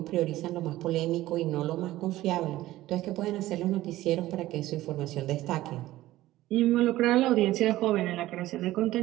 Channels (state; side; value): quieter; left; 15.9 dB